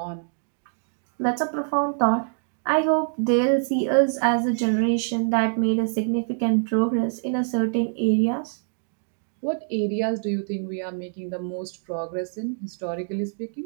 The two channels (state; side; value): silent; left; digital silence